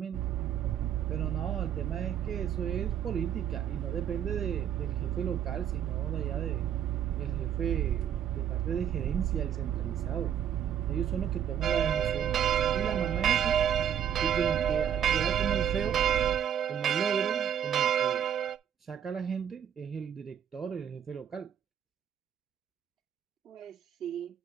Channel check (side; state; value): left; quieter; 9.2 dB